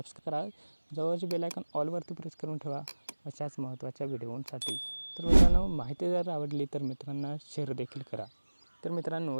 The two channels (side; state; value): both; inverted; correlation -1.00